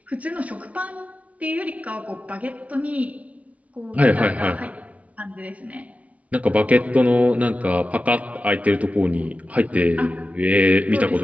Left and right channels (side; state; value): left; late; 0.067 ms